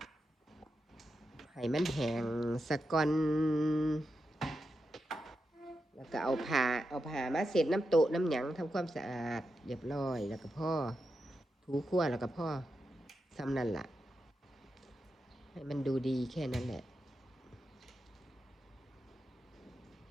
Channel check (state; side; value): normal; both; correlation 0.87